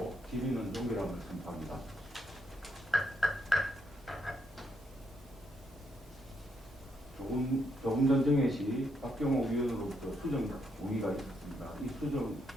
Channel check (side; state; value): both; normal; correlation 0.77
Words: 질의는 종결함을 선포합니다. 조금 전 정회 시 박경호 위원으로부터 수정 동의가 있었습니다. 이 수정